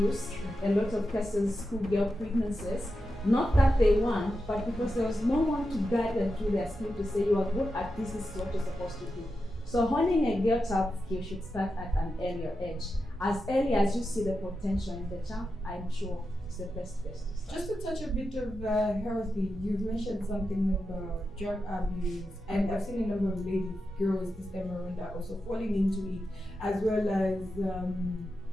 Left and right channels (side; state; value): both; normal; correlation 0.89